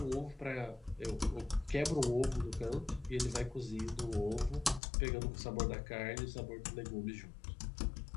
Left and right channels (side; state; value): right; drops out; at 4.8 s